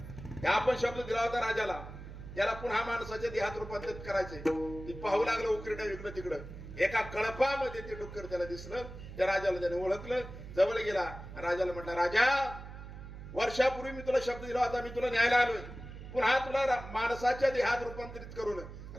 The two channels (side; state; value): right; noise; hum, 12 dB below the sound